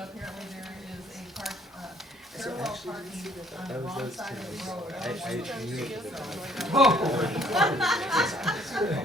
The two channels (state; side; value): normal; both; correlation 0.62